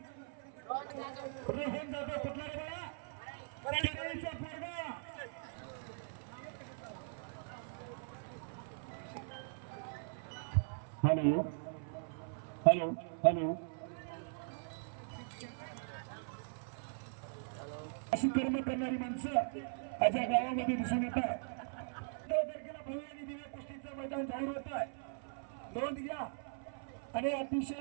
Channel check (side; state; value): left; silent; 51 dB below the other